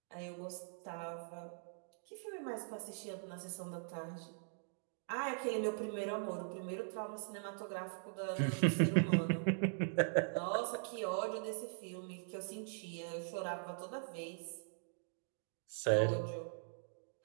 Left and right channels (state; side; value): silent; left; digital silence